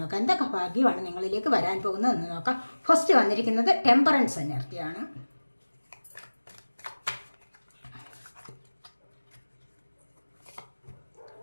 എന്തൊക്കെ ഭാഗ്യമാണ് നിങ്ങളിലേക്ക് വരാൻ പോകുന്നത് എന്ന് നോക്കാം. ഫസ്റ്റ് വന്നിരിക്കുന്നത് ടെമ്പറൻസ് എനർജിയാണ്.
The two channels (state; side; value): inverted; both; correlation -1.00